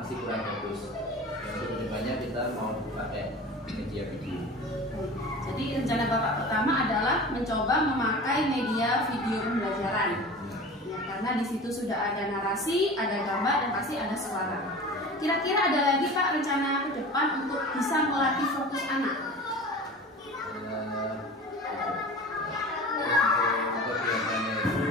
kurang bagus. Yang kedepannya kita mau pakai media video. Jadi rencana Bapak pertama adalah mencoba memakai media video pembelajaran. Ya, karena di situ sudah ada narasi, ada gambar, dan pasti ada suara. Kira-kira ada lagi Pak rencana ke depan untuk bisa melatih fokus anak?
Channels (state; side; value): normal; both; correlation 0.36